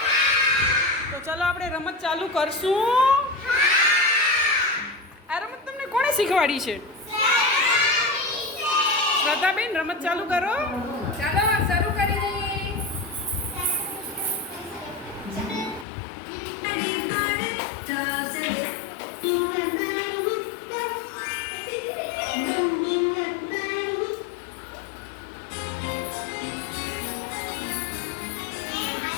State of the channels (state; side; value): drops out; right; at 15.9 s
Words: તો ચલો આપણે રમત ચાલુ કરશું. આ રમત તમને કોણે શીખવાડી છે? શ્રદ્ધાબેન, રમત ચાલુ કરો. ચાલો શરૂ કરી દઈએ.